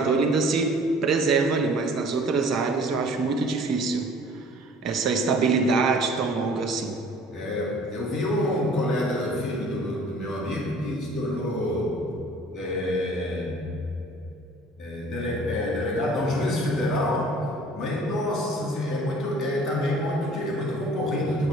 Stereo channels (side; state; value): both; normal; correlation 0.50